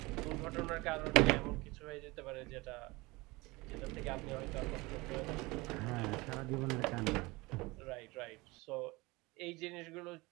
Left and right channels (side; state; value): left; quieter; 22.9 dB